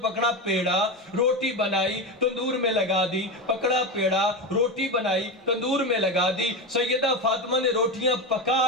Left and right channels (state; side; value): normal; both; correlation 0.18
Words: پکڑا پیڑا، روٹی بنائی تندور میں لگا دی، پکڑا پیڑا روٹی بنائی تندور میں لگا دی۔ سیدہ فاطمہ نے روٹی روٹیاں